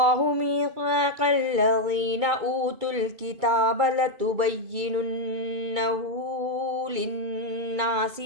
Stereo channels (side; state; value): left; late; 2.3 ms